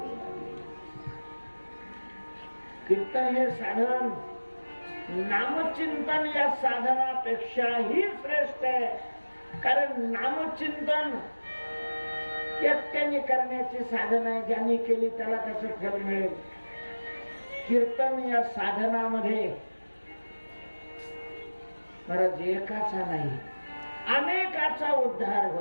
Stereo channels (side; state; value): both; inverted; correlation -1.00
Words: कीर्तन हे साधन नामचिंतन या साधनापेक्षाही श्रेष्ठ आहे. कारण नामचिंतन एकट्याने करण्याची साधन आहे. ज्यांनी केली त्याला त्याचं फल मिळेल. कीर्तन या साधनामध्ये महाराज एकाचा नाही अनेकाचा उद्धार